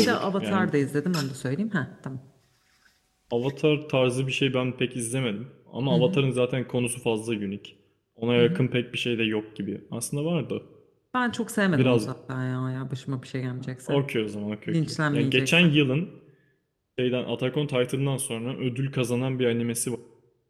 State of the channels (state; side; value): identical; both; correlation 1.00